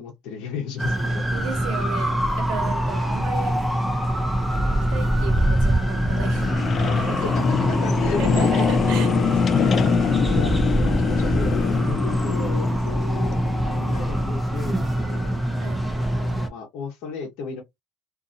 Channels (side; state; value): both; normal; correlation 0.84